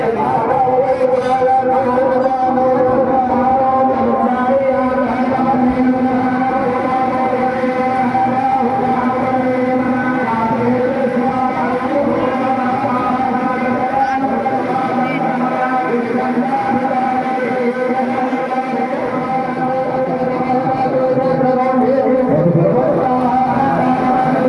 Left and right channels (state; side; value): identical; both; correlation 1.00